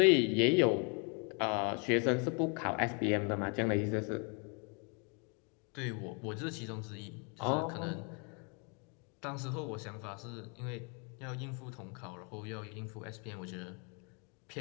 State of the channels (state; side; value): quieter; right; 35.9 dB